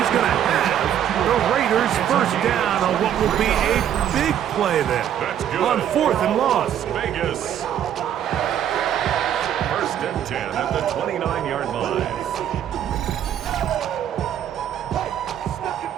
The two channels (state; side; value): quieter; left; 10.1 dB